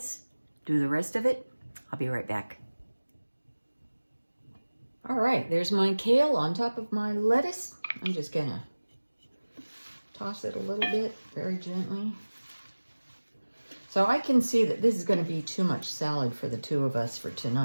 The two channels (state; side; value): inverted; both; correlation -1.00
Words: do the rest of it. I'll be right back. All right, there's my kale on top of my lettuce. I'm just going to toss it a little bit, very gently. So I can see that this is going to be too much salad for the two of us for